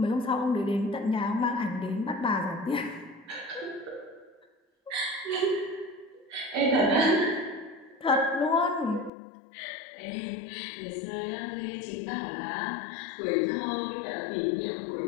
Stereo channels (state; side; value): drops out; right; at 9.1 s